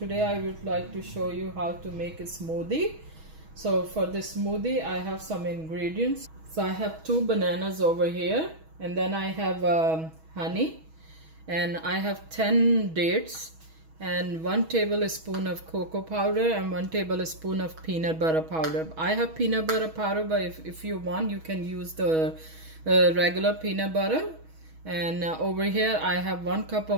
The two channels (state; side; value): late; left; 6.2 ms